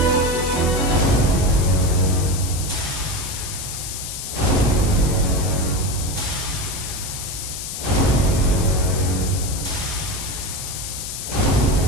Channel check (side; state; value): left; noise; hiss, 7 dB below the sound